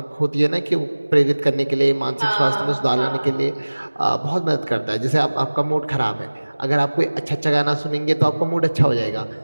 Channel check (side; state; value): both; inverted; correlation -1.00